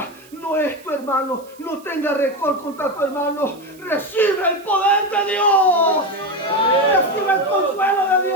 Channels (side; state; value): right; noise; hiss, 26 dB below the sound